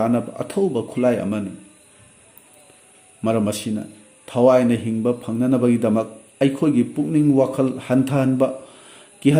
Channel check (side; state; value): both; identical; correlation 1.00